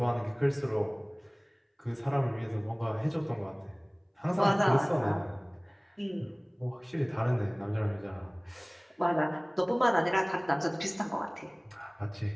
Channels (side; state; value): both; identical; correlation 1.00